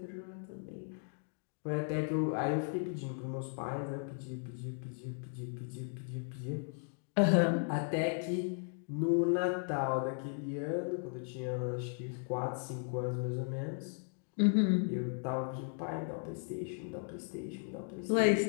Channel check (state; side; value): silent; right; 54 dB below the other